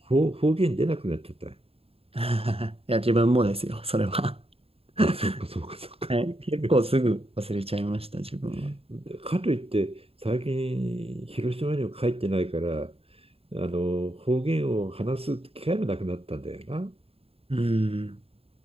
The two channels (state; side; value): late; left; 0.28 ms